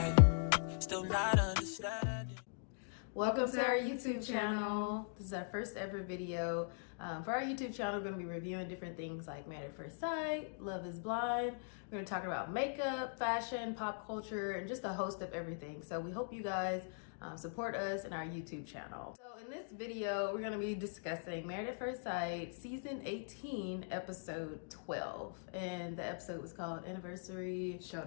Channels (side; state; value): right; silent; digital silence